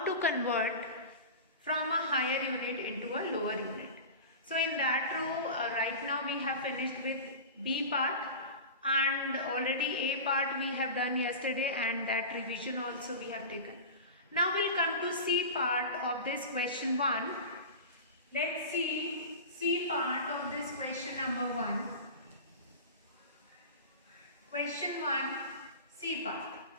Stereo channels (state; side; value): inverted; both; correlation -0.30